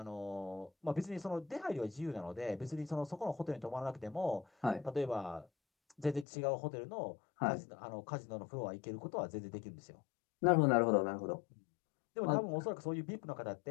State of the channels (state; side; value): drops out; right; at 6.2 s